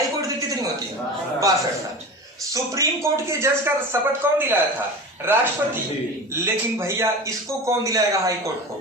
कोर्ट की कितनी होती है? 62 साल। सुप्रीम कोर्ट के जज का शपथ कौन दिलाया था? राष्ट्रपति। लेकिन भैया इसको कौन दिलाएगा हाई कोर्ट को?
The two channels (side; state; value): both; normal; correlation 0.31